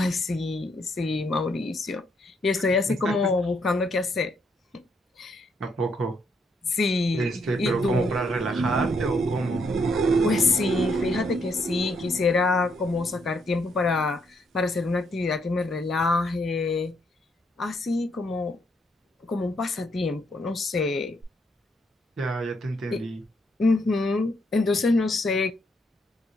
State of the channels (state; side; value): normal; both; correlation 0.74